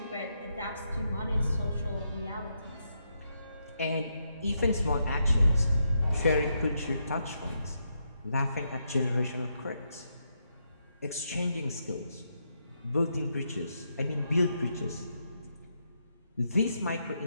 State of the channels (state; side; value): inverted; both; correlation -0.81